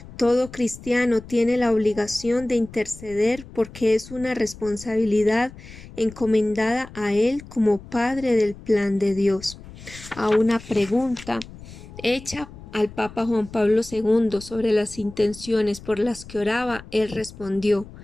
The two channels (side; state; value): left; noise; rumble, 17 dB below the sound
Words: Todo cristiano tiene la obligación de interceder porque es una responsabilidad encomendada a él como Padre del plan de Dios. A una pregunta hecha al Papa Juan Pablo II sobre las intenciones por las que oraba, él respondió